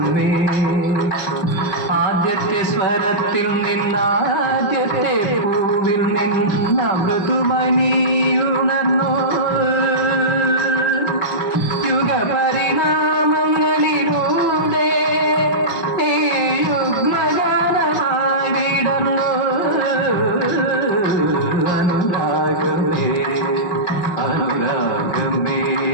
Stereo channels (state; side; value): late; right; 5.1 ms